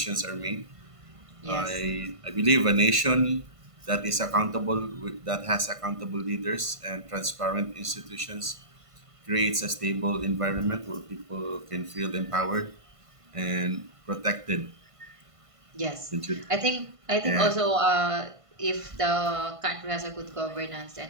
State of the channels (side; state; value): left; late; 1.5 ms